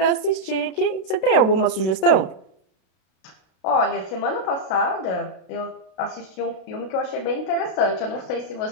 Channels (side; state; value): right; late; 32 ms